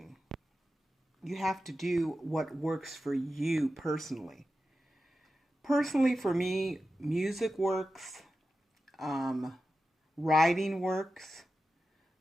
you have to do what works for you personally. Personally, for me, music works, writing works,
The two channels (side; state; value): both; normal; correlation 0.92